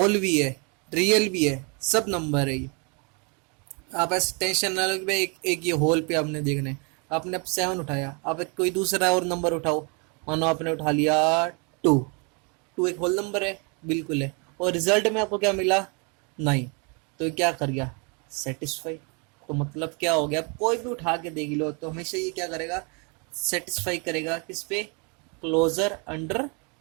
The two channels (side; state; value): left; quieter; 33.8 dB